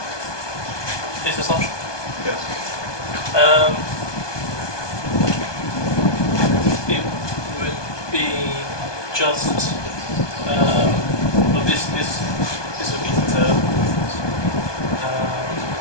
This assumption. Yes. It would be just well, this would be determined,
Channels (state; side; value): late; right; 1.2 ms